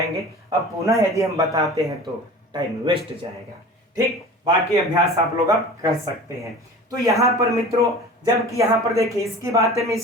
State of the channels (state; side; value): normal; both; correlation 0.39